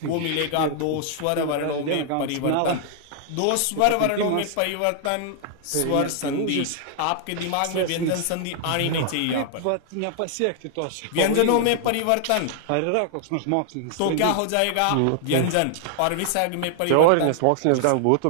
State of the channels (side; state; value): both; different; correlation -0.01